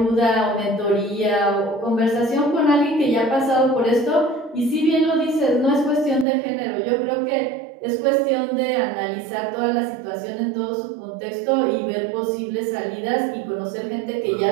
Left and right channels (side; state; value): left; drops out; at 6.2 s